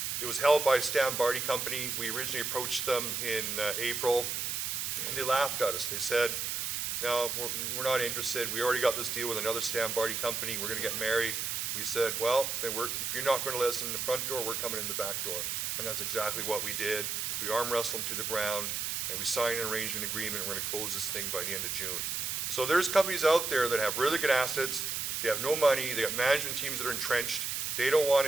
It was held by Stan Barty Company. We originally approached them in April, and they laughed at us. They said, "No, we're not interested. We already got this deal with another Stan Barty company. We're going to get married." We said, "Well, then if you're not going to let us in the front door, we're coming in the back door." And that's exactly what we did. We arm wrestled them to the ground, and we signed an arrangement agreement, and we're going to close this thing by the end of June. So there's companies out there that have really good assets. They have no money. They have management teams that are entrenched. They don't want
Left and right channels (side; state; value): right; noise; hiss, 1 dB below the sound